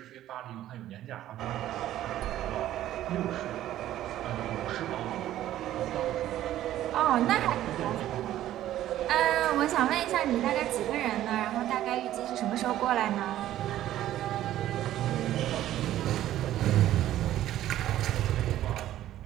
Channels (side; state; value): left; quieter; 13.1 dB